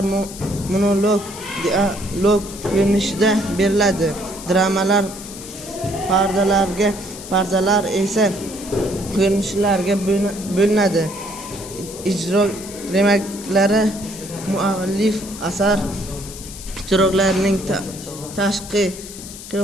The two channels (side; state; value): left; noise; hiss, 13 dB below the sound